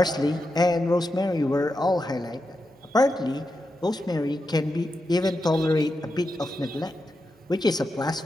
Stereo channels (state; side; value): normal; both; correlation 0.88